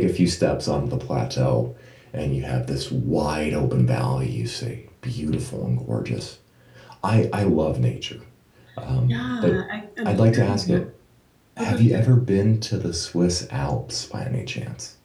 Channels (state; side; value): identical; both; correlation 1.00